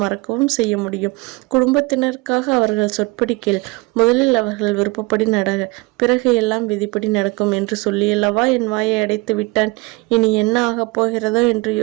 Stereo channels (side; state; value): left; quieter; 24.4 dB